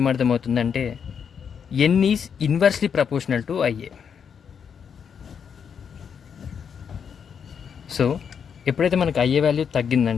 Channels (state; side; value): quieter; right; 7.2 dB